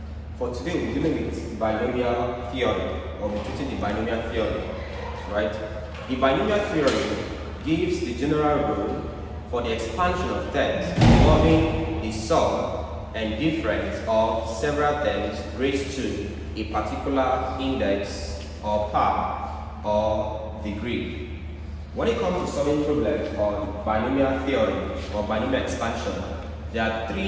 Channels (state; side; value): identical; both; correlation 1.00